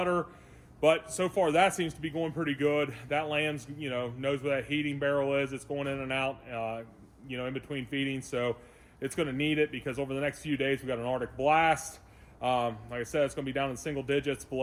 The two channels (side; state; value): both; identical; correlation 1.00